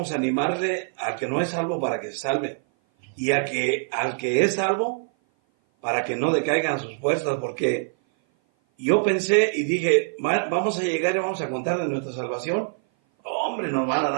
animarle al que no es salvo para que se salve. Y al que es salvo, para que no decaigan sus fuerzas, porque yo pensé y dije, vamos a llegar y vamos a contar de nuestra salvación. Hombre, nos van a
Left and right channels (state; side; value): silent; left; 56 dB below the other